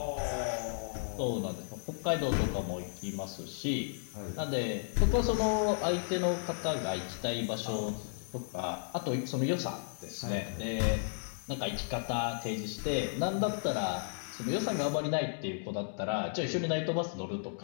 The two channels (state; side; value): silent; right; digital silence